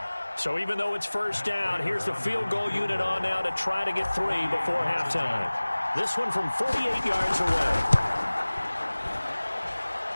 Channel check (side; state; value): both; inverted; correlation -1.00